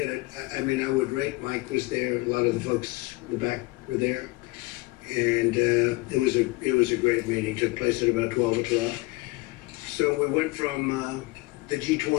had, I mean, I would rate Mike was there, a lot of the folks in the back were there. And it was a great meeting, took place at about 12 o'clock. So we went from the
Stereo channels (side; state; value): right; quieter; 23.6 dB